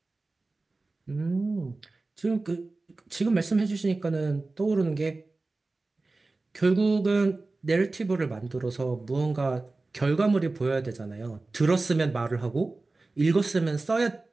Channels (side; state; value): left; quieter; 3.4 dB